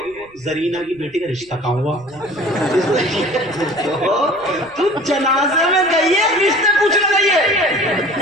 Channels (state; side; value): noise; left; rumble, 28 dB below the sound